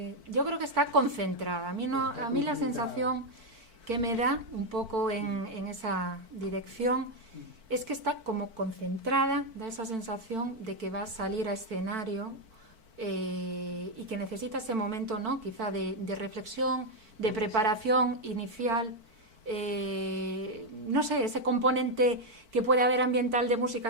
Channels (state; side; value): late; left; 4.5 ms